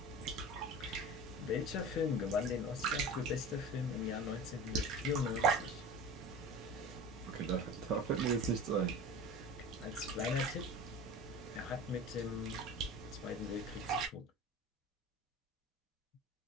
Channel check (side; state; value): both; normal; correlation 0.34